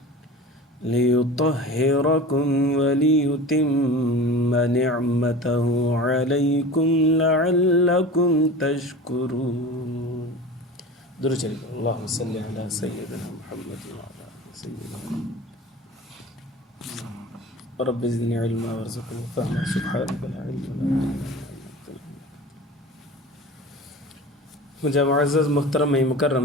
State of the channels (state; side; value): normal; both; correlation 0.35